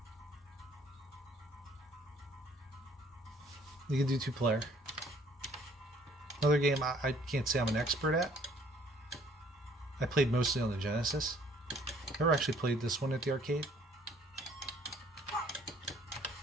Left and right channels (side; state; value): both; normal; correlation 0.59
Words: You can do 2-player. Another game I can't say I'm an expert at. I played mostly on the Genesis. Never actually played this one at the arcade.